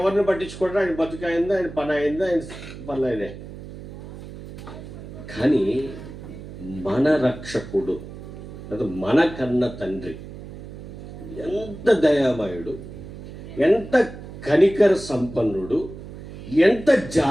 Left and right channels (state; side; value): noise; right; hum, 13 dB below the sound